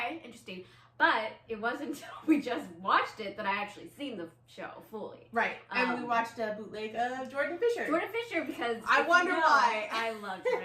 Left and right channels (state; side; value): identical; both; correlation 1.00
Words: interesting. But it wasn't until we just watched it that I actually seen the show fully. Right, and we watched a bootleg of Jordan Fisher. Jordan Fisher, because I wonder why. I love